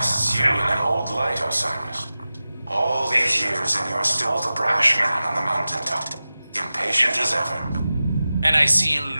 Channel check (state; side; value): inverted; both; correlation -0.95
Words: you in an old light, Osiris. All these years and you're still the brash man on the mountaintop, impatient as ever. And I see in